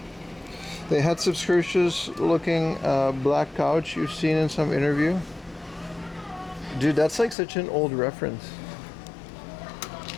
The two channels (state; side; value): drops out; right; at 7.4 s